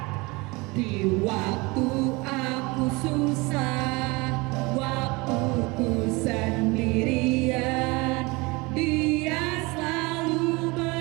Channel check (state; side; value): quieter; left; 25.0 dB